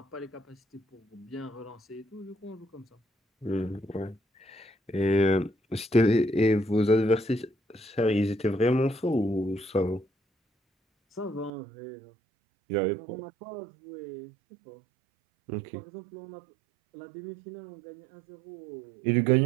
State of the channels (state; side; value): drops out; left; at 11.5 s